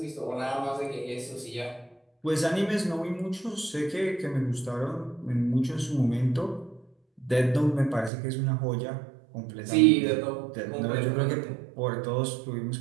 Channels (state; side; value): drops out; left; at 8.1 s